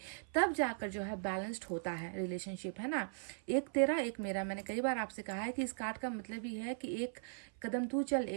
तब जाकर जो है बैलेंस्ड होता है रिलेशनशिप, है ना। एक तेरा एक मेरा, मैंने कई बार आपसे कहा है कि इस कार्ड का मतलब ही है कि एक कदम तू चल,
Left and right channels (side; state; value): left; silent; 52 dB below the other